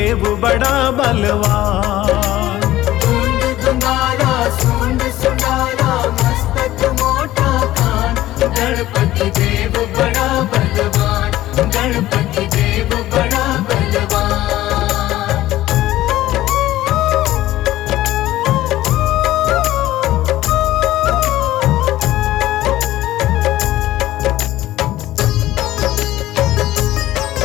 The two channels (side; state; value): right; quieter; 15.1 dB